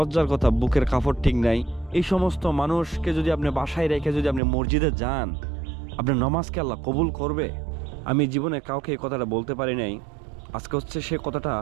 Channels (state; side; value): drops out; left; at 4.4 s